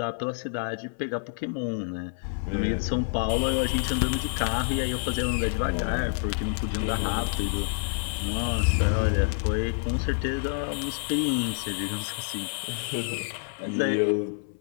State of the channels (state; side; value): silent; right; 57 dB below the other